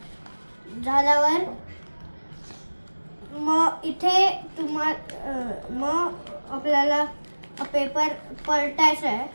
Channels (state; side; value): inverted; both; correlation -1.00